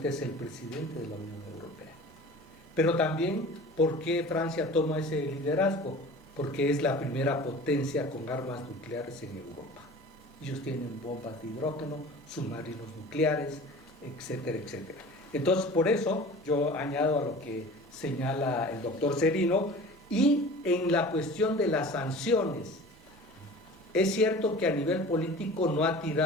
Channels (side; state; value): both; normal; correlation 0.41